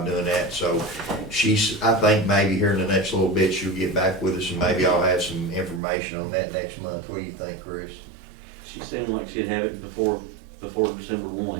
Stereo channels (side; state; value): left; drops out; at 5.8 s